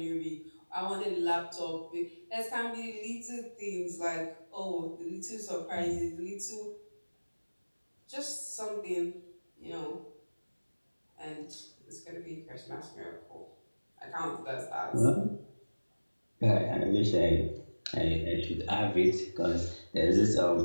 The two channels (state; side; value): inverted; both; correlation -1.00